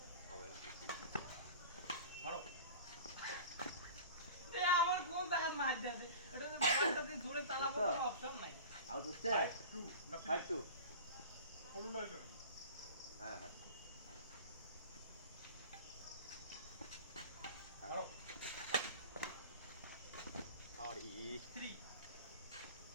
হবে না মারো আমার কোন জায়গা মার দেবে এটা তো বলটাতে জোরে চালাবো কোনো অপশন নাই আউট হচ্ছে 2 না 5-2 ফলো লাইট হ্যাঁ হ্যাঁ মারো আর ই 3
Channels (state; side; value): inverted; both; correlation -0.37